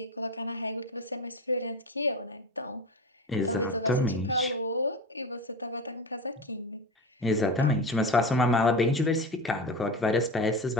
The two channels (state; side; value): normal; both; correlation 0.26